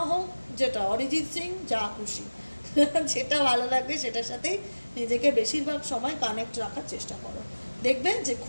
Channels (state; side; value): inverted; both; correlation -1.00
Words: হোক, যেটা অরিজিৎ সিং, যা খুশি, যেটা ভালো লাগবে সেটার সাথেই নিজেকে বেশিরভাগ সময় কানেক্ট রাখার চেষ্টা করো। দেখবে যে